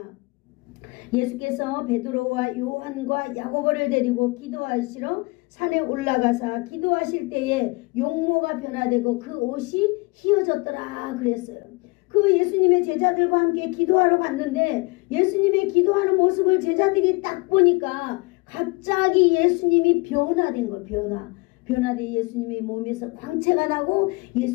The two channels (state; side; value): quieter; right; 26.2 dB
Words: 예수께서 베드로와 요한과 야고보를 데리고 기도하시러 산에 올라가사 기도하실 때에 용모가 변화되고 그 옷이 휘어졌더라 그랬어요. 그 예수님의 제자들과 함께 기도하러 갔는데 예수님의 기도하는 모습을 제자들이 딱 보니까 갑자기 예수님이 변화된 거예요. 변화된 예수님의 몸에서 광채가 나고